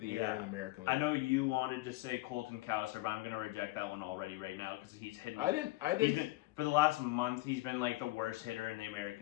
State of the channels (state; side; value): quieter; right; 19.5 dB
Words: the Year in the American League. I know you wanted to say Colton Cowser, but I'm going to reject that one already right now because he's hitting. I didn't. For the last month, he's been the worst hitter in the